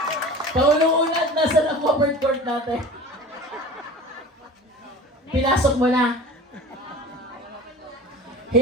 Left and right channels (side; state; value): both; normal; correlation 0.38